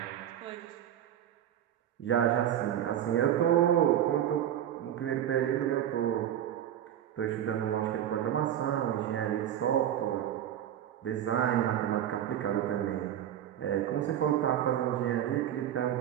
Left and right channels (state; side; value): quieter; left; 10.8 dB